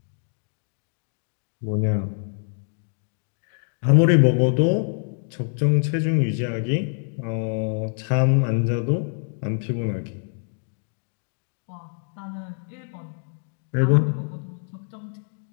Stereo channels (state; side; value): silent; right; 59 dB below the other